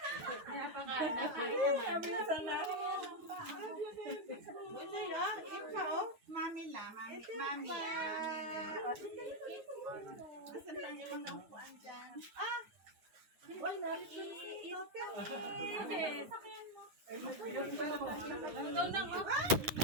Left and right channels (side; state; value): left; late; 9.3 ms